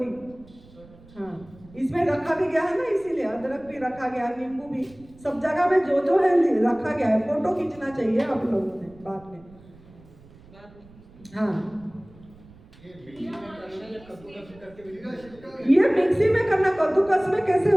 हाँ, इसमें रखा भी गया है ना, इसीलिए अदरक भी रखा गया, नींबू भी, सब जगह में जो है रखा गया है। फोटो खींचना चाहिए आप लोगों ने बाद में। हाँ, ये मिक्सी में करना, कद्दूकस में कैसे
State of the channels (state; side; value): noise; right; rumble, 24 dB below the sound